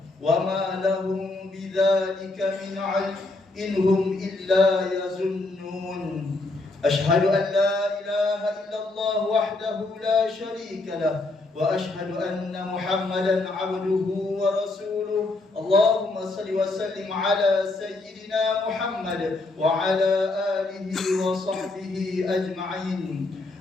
وما لهم بذلك من علم إن هم إلا يظنون. أشهد أن لا إله إلا الله وحده لا شريك له وأشهد أن محمدا عبده ورسوله. اللهم صل وسلم على سيدنا محمد وعلى آله وصحبه أجمعين.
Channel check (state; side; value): quieter; right; 3.1 dB